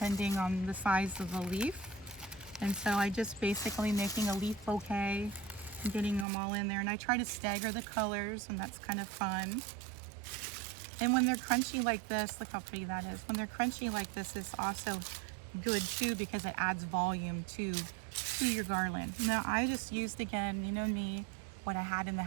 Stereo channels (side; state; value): left; drops out; at 6.2 s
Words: on the size of the leaf. And so I just basically making a leaf bouquet and getting them all in there. And I try to stagger the colors, and that's kind of fun. And when they're crunchy like this, look how pretty that is. When they're crunchy like this, it's also good too because it adds volume to your garland. Now I just used, again, you know me, what I had in the